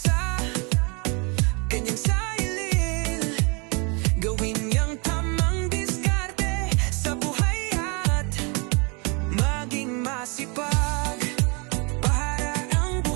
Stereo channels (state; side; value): quieter; left; 32.0 dB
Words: kanyang sarili. Gawin niyang tamang diskarte sa buhay at maging masipag para ang